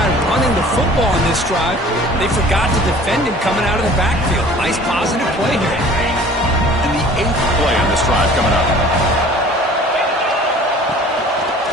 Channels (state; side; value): normal; both; correlation 0.48